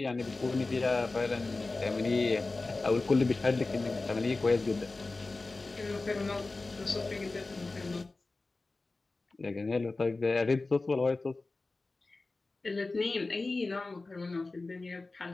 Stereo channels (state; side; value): quieter; right; 3.4 dB